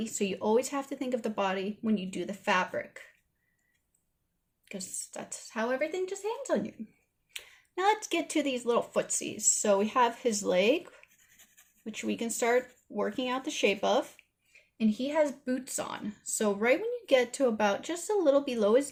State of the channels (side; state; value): both; identical; correlation 1.00